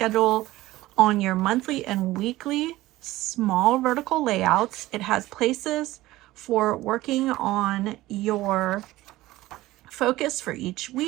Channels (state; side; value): quieter; left; 17.3 dB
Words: on your monthly and weekly small vertical layouts. It has places for working on your focus for each